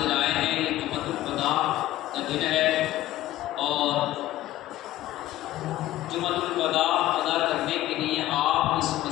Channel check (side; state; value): right; quieter; 14.9 dB